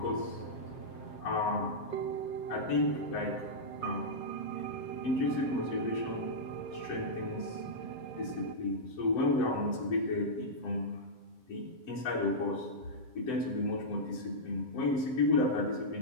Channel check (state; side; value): late; right; 8.0 ms